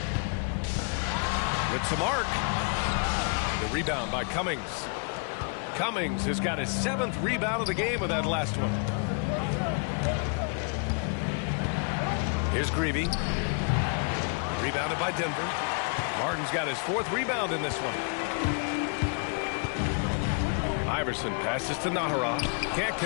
With some arc. The rebound by Cummings. Cummings has got his 7th rebound of the game with that last one. Here's Gravy. Rebounded by Denver. Martin's got his 4th rebound in this one. Iverson passes to Nahara. Can't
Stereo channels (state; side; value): quieter; right; 39.7 dB